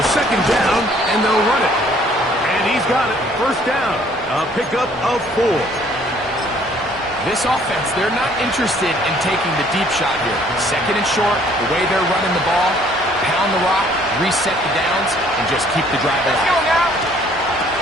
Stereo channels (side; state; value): both; normal; correlation 0.60